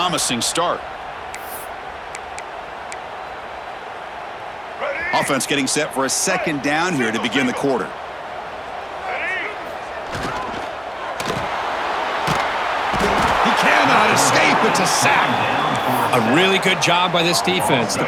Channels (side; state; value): both; identical; correlation 1.00